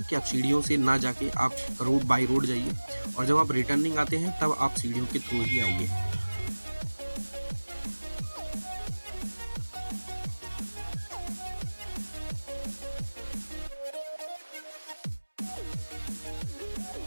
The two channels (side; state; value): both; inverted; correlation -1.00